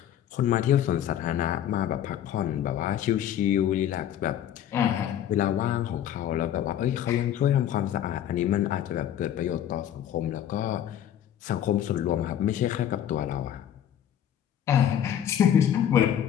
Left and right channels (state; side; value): quieter; right; 10.4 dB